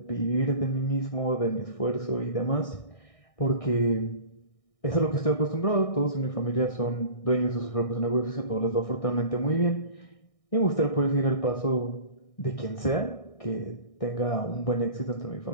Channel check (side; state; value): right; late; 1.6 ms